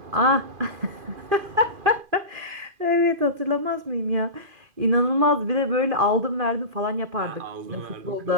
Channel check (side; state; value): left; late; 2.5 ms